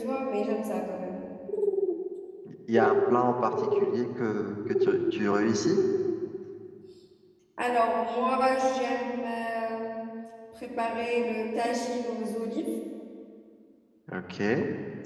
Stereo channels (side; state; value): both; identical; correlation 1.00